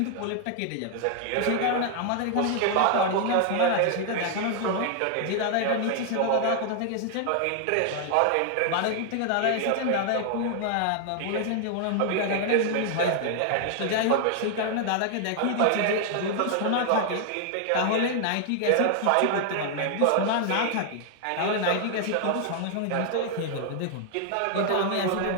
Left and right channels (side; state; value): both; different; correlation 0.00